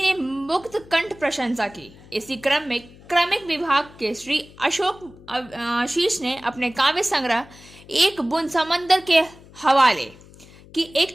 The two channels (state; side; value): noise; left; hum, 22 dB below the sound